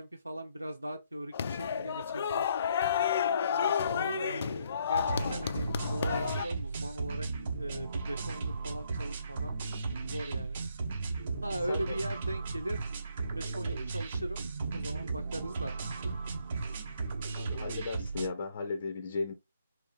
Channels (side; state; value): both; inverted; correlation -0.72